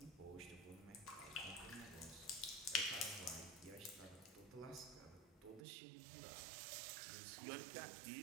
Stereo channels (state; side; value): drops out; left; at 5.7 s